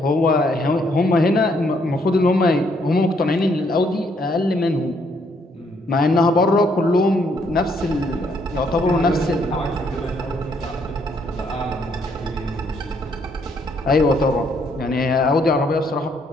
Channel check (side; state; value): both; normal; correlation 0.70